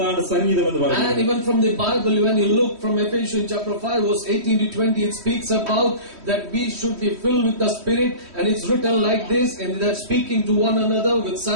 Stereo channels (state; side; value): late; left; 3.1 ms